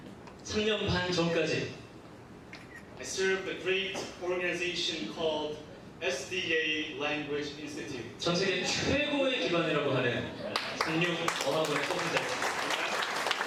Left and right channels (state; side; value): identical; both; correlation 1.00